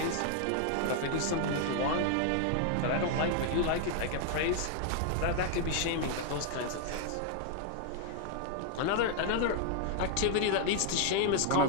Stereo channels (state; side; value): different; both; correlation 0.00